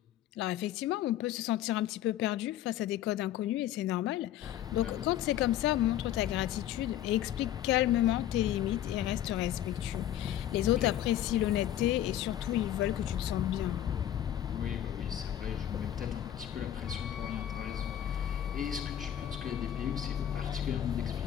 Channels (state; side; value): quieter; right; 11.7 dB